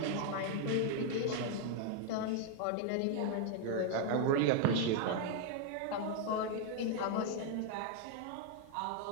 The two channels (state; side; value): different; both; correlation 0.00